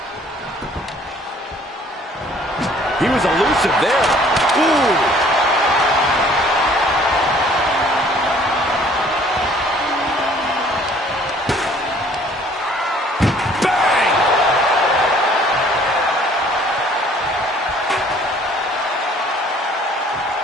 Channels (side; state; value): both; normal; correlation 0.56